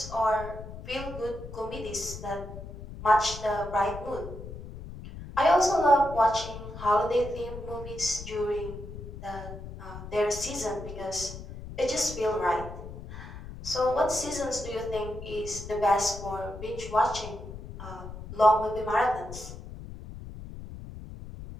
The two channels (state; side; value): noise; left; rumble, 11 dB below the sound